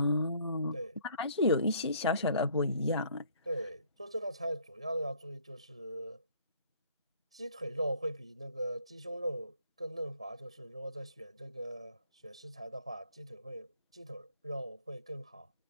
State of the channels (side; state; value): both; inverted; correlation -0.60